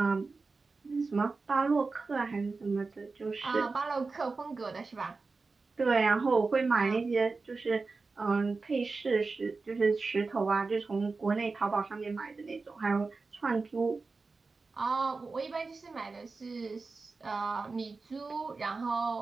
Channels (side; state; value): left; quieter; 4.1 dB